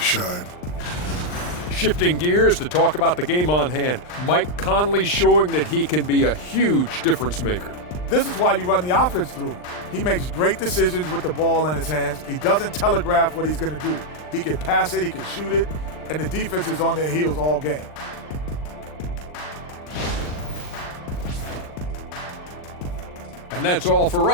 shine. Shifting gears to talk about the game on hand. Mike Conley showing that he can be a huge difference maker. This is why you run the offense through him. He makes great decisions with the ball in his hands. He doesn't telegraph what he's going to do. He can pass it, he can shoot it, and the defense is on their heels all game. And that's all for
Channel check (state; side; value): late; right; 39 ms